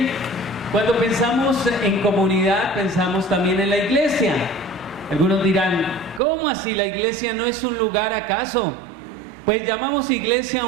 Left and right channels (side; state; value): left; drops out; at 6.2 s